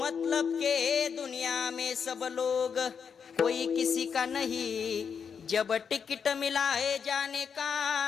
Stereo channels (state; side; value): quieter; right; 6.6 dB